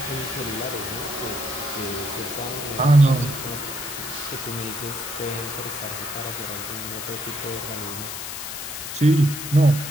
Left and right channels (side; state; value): left; noise; hiss, 7 dB below the sound